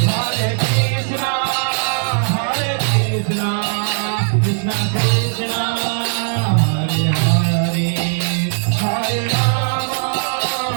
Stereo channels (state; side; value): silent; left; 59 dB below the other